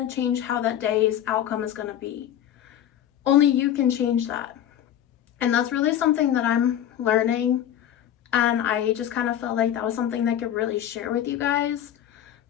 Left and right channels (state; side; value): quieter; right; 10.7 dB